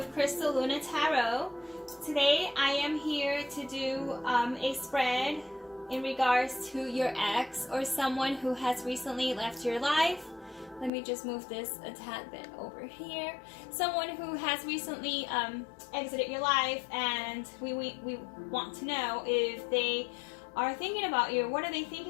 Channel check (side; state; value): right; drops out; at 10.9 s